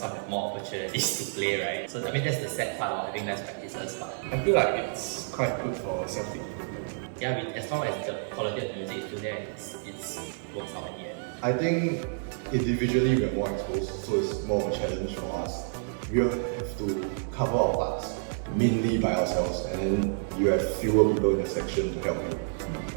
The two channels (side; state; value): left; silent; digital silence